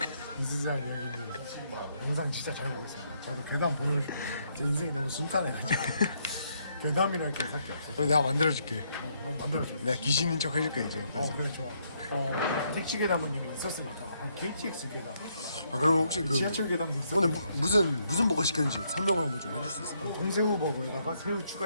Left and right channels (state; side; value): inverted; both; correlation -0.74